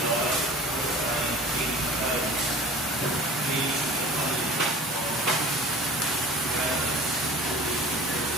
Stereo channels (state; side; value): normal; both; correlation 0.42